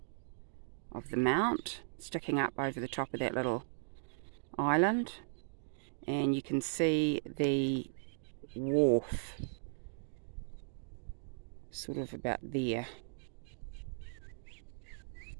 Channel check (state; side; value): silent; left; digital silence